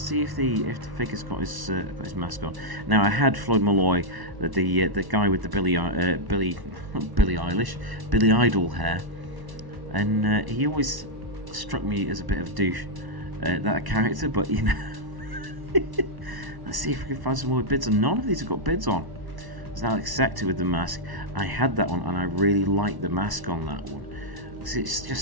if the figure's got his mask on. Now I had Floyd Malloy, the guy with the Billie Idol hair. And he always struck me as a bit of a douche, that character, but you know. Let's see if we can find some more bids on. None of these have got bids on. There's Alex Sector with the mask. I had that one and I really like the mask on that one. It's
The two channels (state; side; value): late; left; 1.1 ms